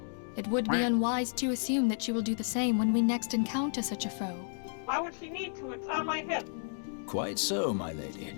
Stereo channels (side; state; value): right; silent; digital silence